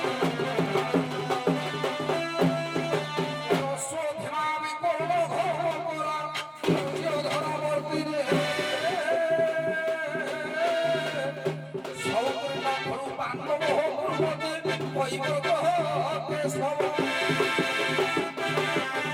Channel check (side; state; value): both; identical; correlation 1.00